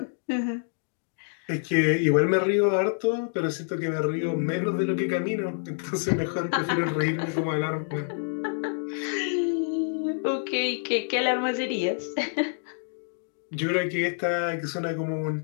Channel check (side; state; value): right; silent; digital silence